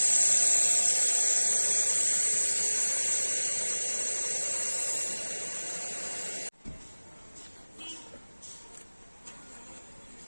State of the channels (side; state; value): both; inverted; correlation -1.00